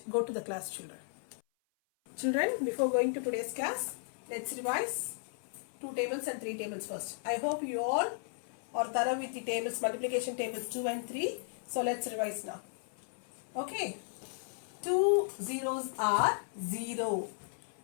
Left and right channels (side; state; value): right; silent; 54 dB below the other